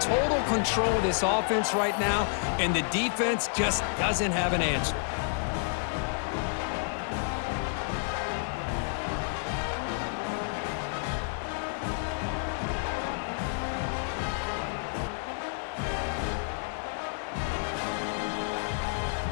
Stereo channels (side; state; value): right; silent; digital silence